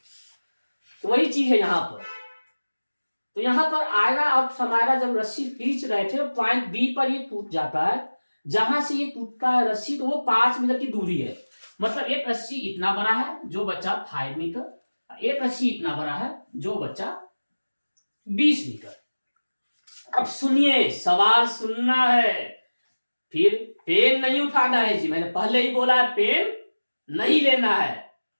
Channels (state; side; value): inverted; both; correlation -1.00